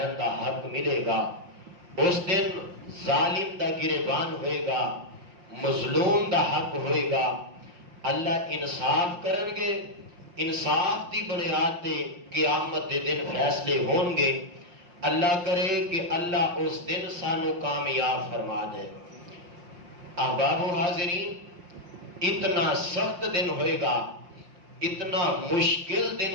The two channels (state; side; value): late; left; 5.7 ms